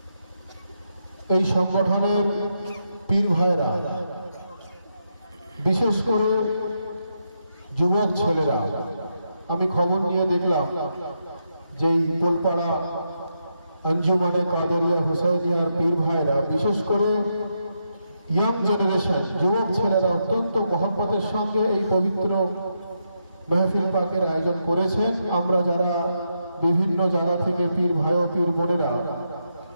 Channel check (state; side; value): inverted; both; correlation -0.82